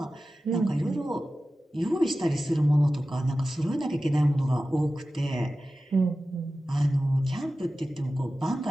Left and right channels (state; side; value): normal; both; correlation 0.95